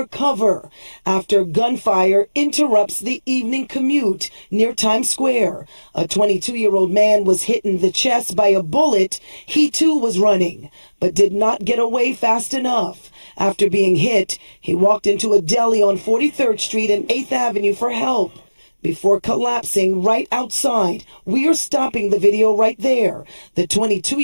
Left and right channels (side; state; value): both; inverted; correlation -1.00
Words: cover after gunfire interrupts the evening commute near Times Square. A 22-year-old man was hit in the chest by a bullet. He too was running, but did not get away fast enough. After being hit, he walked into a deli on 43rd Street and 8th Avenue for help before collapsing right outside. We are stopping the video right there. The